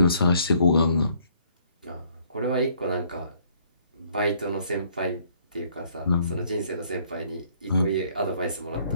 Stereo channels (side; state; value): both; inverted; correlation -0.63